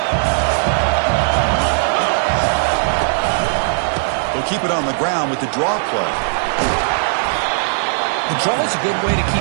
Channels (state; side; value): silent; left; digital silence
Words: They'll keep it on the ground with the draw play. The draw is a good way to